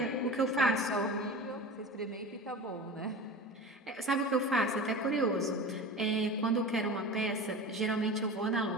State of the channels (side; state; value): both; normal; correlation 0.32